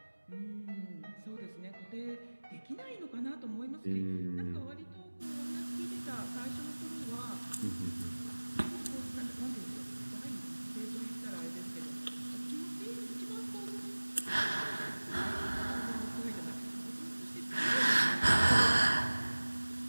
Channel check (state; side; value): inverted; both; correlation -1.00